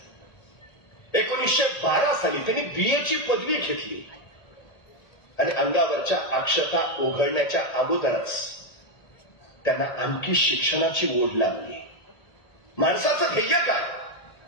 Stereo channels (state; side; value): late; right; 1.9 ms